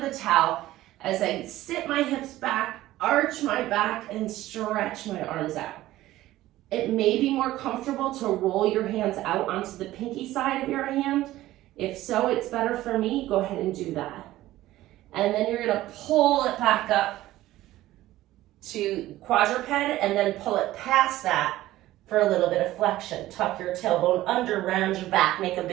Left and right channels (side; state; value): left; quieter; 15.6 dB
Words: towel as I sit my hips back, arch my back, and stretch my arms out. It may be more comfortable to roll your hands out onto the pinky side of your hand. If so, it's better for me. Go ahead and do that. And then you're going to pull it back up to quadruped and then pull it past that for a little bit of flexion. Tuck your tailbone under, round your back, make a